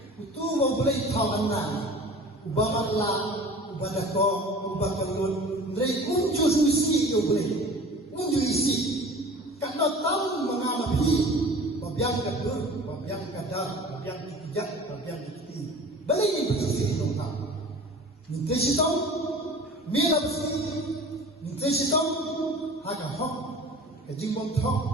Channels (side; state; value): both; normal; correlation 0.42